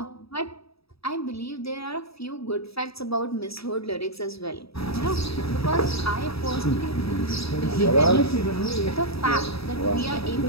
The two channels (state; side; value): late; right; 0.77 ms